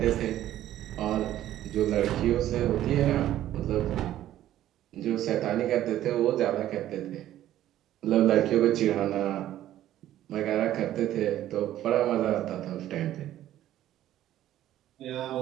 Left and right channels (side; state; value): left; quieter; 12.9 dB